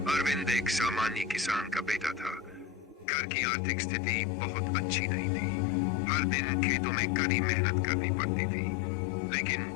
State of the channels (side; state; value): right; drops out; at 3.1 s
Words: अरविंद एक सामान्य किसान का बेटा था। घर की आर्थिक स्थिति बहुत अच्छी नहीं थी। हर दिन खेतों में कड़ी मेहनत करनी पड़ती थी, लेकिन